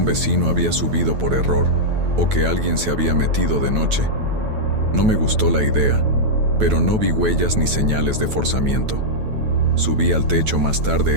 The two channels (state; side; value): late; left; 9.2 ms